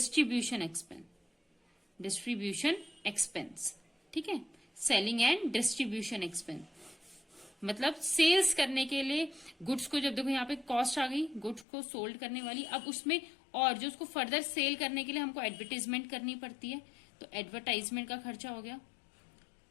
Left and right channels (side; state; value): right; drops out; at 11.7 s